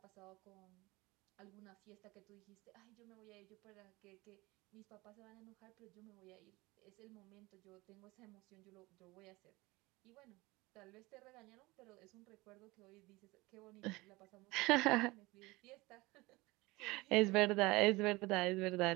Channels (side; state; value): left; quieter; 22.0 dB